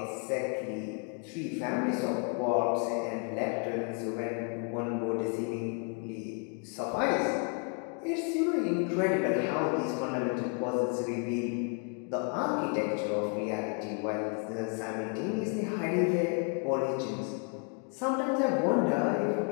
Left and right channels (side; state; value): right; quieter; 39.5 dB